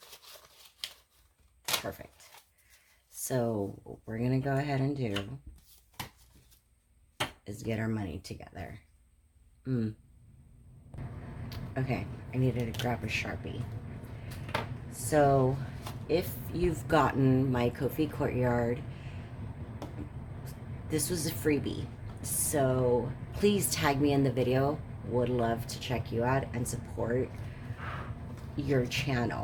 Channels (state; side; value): identical; both; correlation 1.00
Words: Perfect. So what we're gonna go ahead and do is get our money together. Okay, I needed to grab a Sharpie. So if you've gotten my Ko-fi Courtyard, this was a freebie. So please tag me in the video. Would love to check you out and support your